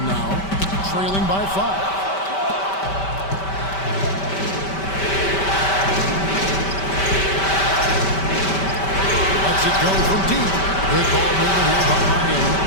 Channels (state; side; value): late; right; 5.2 ms